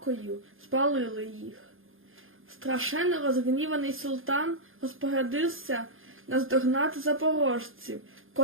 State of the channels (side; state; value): left; late; 0.59 ms